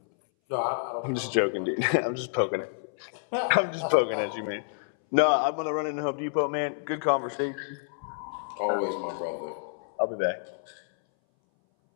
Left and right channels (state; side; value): silent; right; 59 dB below the other